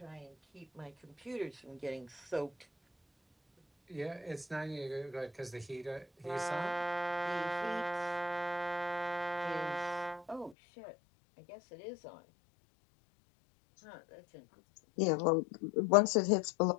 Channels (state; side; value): drops out; right; at 10.6 s